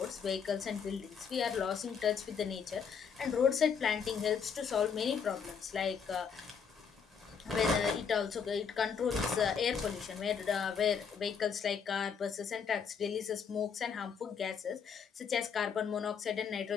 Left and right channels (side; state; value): right; quieter; 6.6 dB